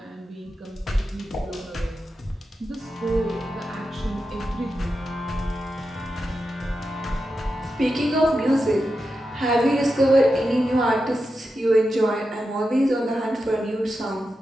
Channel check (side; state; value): both; normal; correlation 0.89